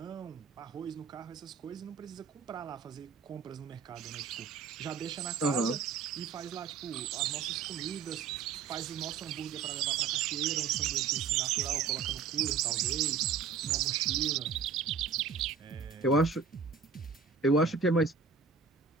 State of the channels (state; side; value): quieter; left; 5.7 dB